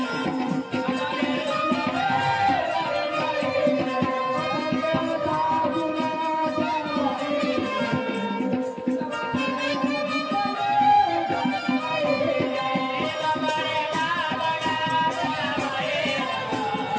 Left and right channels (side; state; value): both; identical; correlation 1.00